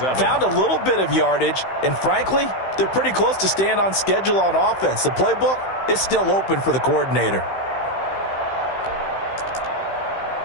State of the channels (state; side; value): late; right; 15 ms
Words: found a little bit of yardage, and frankly, they're pretty close to staying on schedule on offense. The playbook is still open for the coordinator.